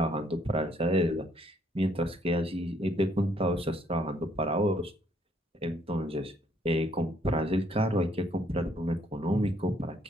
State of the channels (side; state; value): both; normal; correlation 0.68